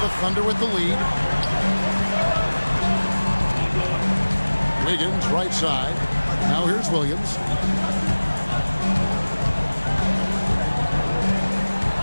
The Thunder with the lead. Wiggins right side. Now here's Williams.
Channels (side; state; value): both; inverted; correlation -1.00